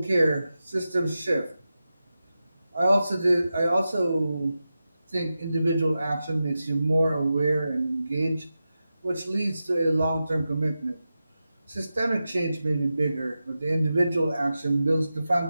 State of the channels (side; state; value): both; inverted; correlation -0.92